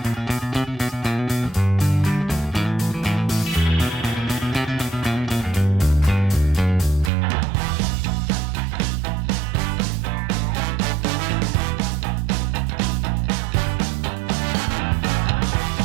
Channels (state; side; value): drops out; left; at 7.1 s